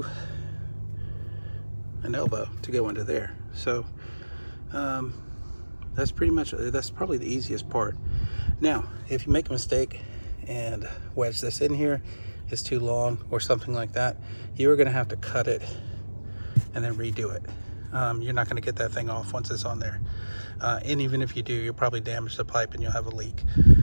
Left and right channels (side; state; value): both; inverted; correlation -1.00